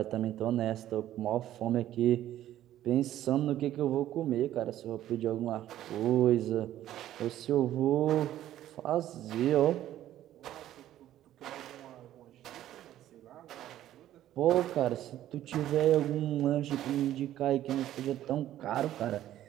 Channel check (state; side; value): quieter; left; 12.8 dB